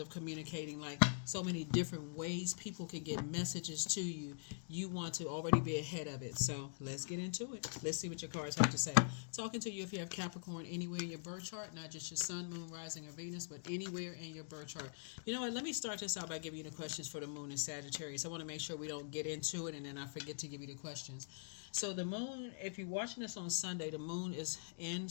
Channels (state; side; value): silent; right; digital silence